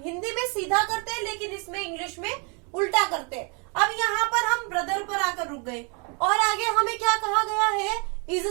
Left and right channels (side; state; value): left; quieter; 34.7 dB